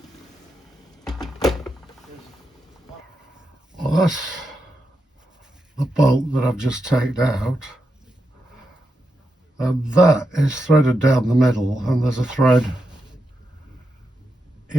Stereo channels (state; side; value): normal; both; correlation 0.86